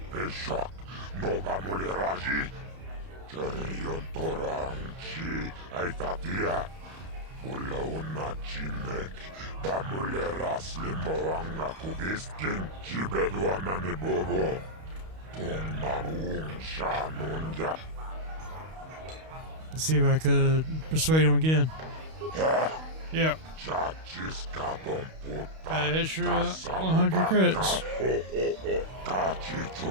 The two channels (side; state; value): left; late; 32 ms